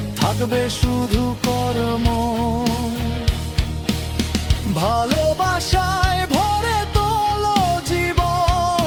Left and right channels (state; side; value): identical; both; correlation 1.00